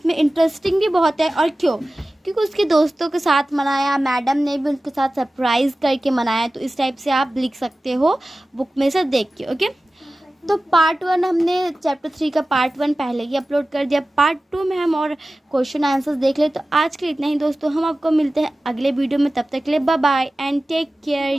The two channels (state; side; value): normal; both; correlation 0.96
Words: इंटरेस्टिंग भी बहुत है। और क्यों? क्योंकि उसके दोस्तों के साथ मनाया, मैडम ने भी उनके साथ सरप्राइज़ करके मनाया। तो इस टाइप से आप लिख सकते हो बुक में से देख के। ओके। तो पार्ट 1 हमने चैप्टर 3 का पार्ट 1 पहले ही अपलोड कर दिया। पार्ट 2 में हम और क्वेश्चन आंसर्स देख ले। तो आज के लिए इतना ही दोस्तों, हम आपको मिलते हैं अगले वीडियो में। तब तक के लिए bye bye and take